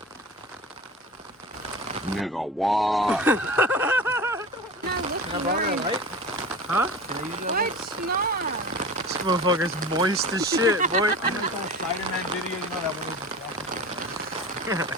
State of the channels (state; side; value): normal; both; correlation 0.34